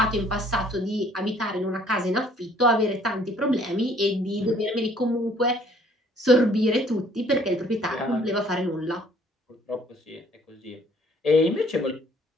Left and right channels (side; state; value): both; normal; correlation 0.59